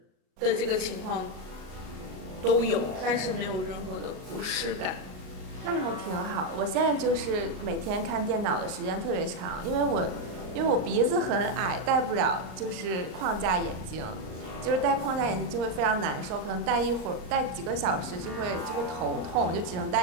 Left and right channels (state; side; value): late; left; 38 ms